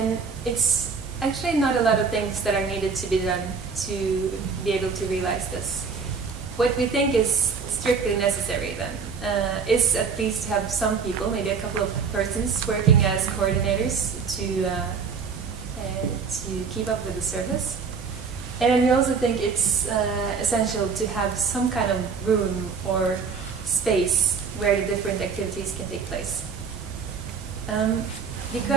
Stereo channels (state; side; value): quieter; left; 5.6 dB